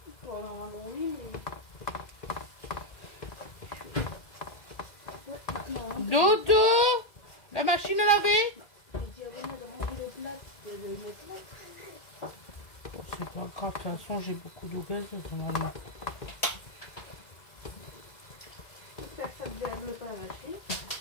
Bon, normalement, oui, mais... Dodo, la machine à laver. Je dis à René de rendre le plat, de le mettre là. C'est pas grave, de toute façon j'ai beaucoup d'eau gazeuse normalement.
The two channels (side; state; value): right; late; 2.0 ms